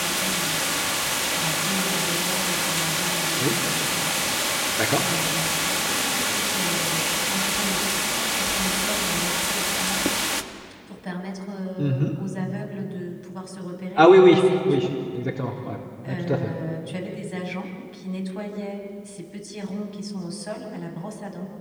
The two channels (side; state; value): both; identical; correlation 1.00